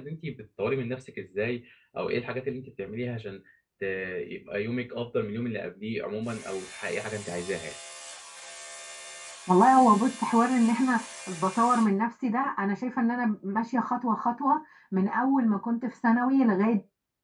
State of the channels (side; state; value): both; identical; correlation 1.00